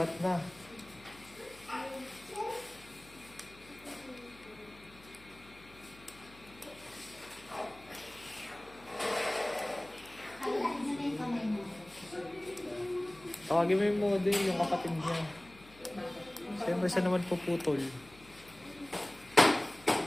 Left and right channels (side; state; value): left; noise; hum, 22 dB below the sound